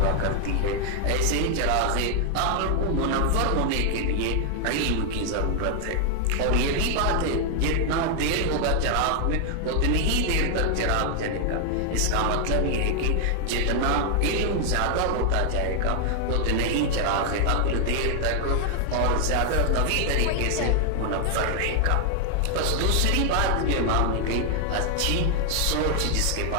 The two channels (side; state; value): both; different; correlation 0.00